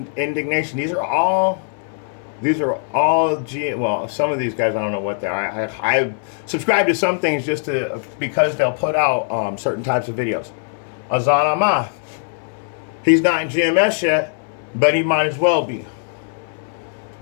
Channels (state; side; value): silent; right; 61 dB below the other